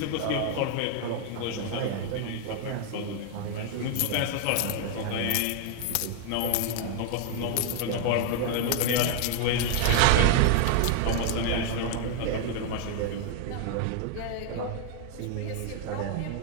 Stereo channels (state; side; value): different; both; correlation 0.00